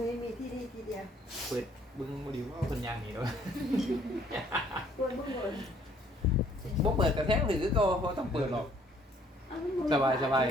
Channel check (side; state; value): both; normal; correlation 0.62